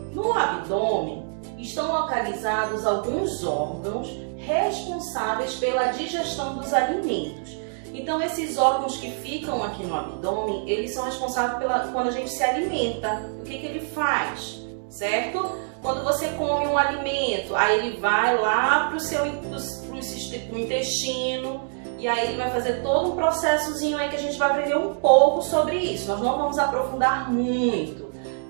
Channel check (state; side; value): silent; left; digital silence